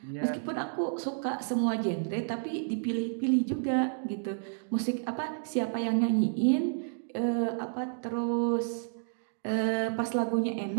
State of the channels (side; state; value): left; silent; digital silence